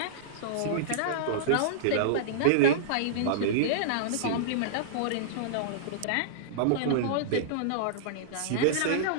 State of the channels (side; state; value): both; different; correlation -0.02